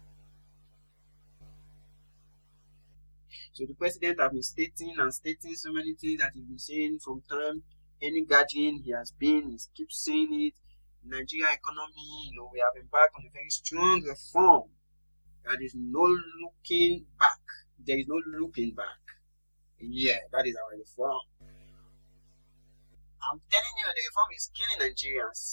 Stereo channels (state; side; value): inverted; both; correlation -1.00